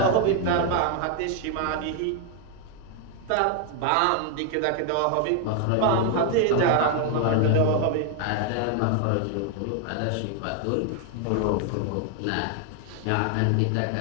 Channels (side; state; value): both; different; correlation 0.00